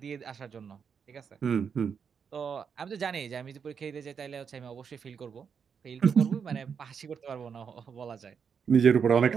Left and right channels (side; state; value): left; quieter; 6.7 dB